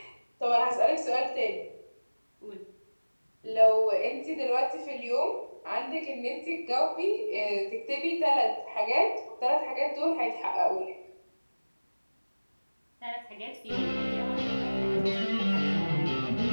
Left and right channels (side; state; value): both; inverted; correlation -1.00